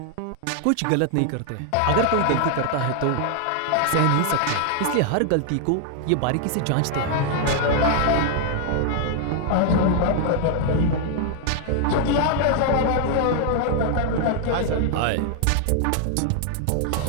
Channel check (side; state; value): both; different; correlation 0.00